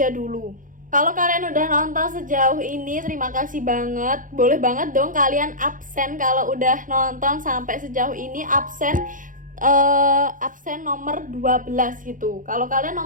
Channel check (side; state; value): left; late; 0.39 ms